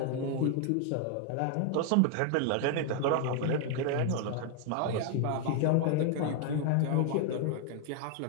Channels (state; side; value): different; both; correlation 0.00